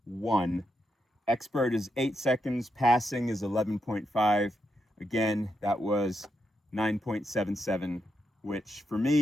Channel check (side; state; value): both; normal; correlation 0.83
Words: 1. Expert is 8 seconds, passing is 11.5. Again, that was 9.77, which for